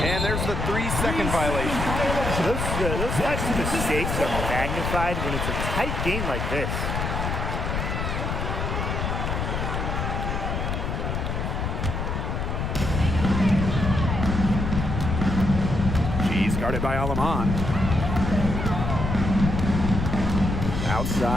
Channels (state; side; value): noise; left; rumble, 2 dB below the sound